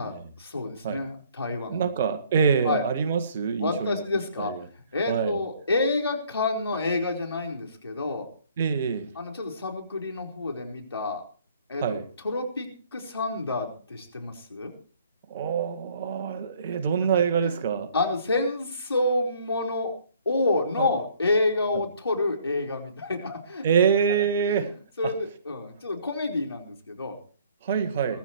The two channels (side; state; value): both; inverted; correlation -0.59